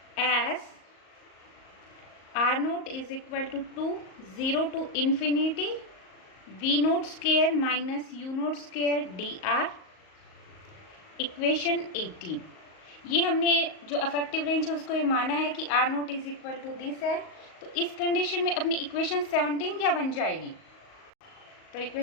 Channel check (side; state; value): right; late; 38 ms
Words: as R naught is equal to 0 to infinity V naught square minus U naught square D are. Equation 18। ये हमने जो अफेक्टिव रेंज है उसको ये माना है कि R naught is equal to this है। तो इस कंडीशन में अपनी इक्वेशन 17 क्या बन जाएगी? तो